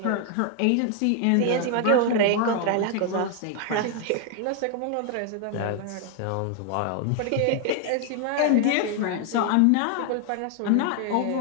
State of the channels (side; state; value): both; different; correlation 0.00